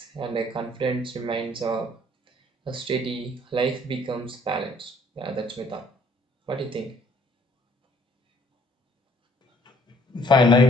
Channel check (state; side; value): normal; both; correlation 0.61